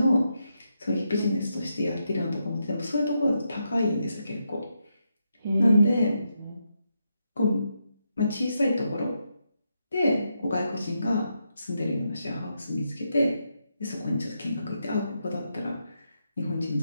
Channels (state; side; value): inverted; both; correlation -0.83